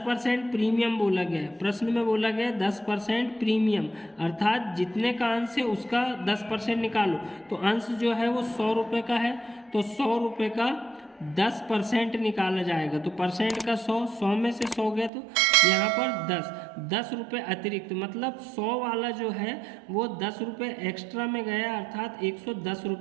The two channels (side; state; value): left; drops out; at 15.1 s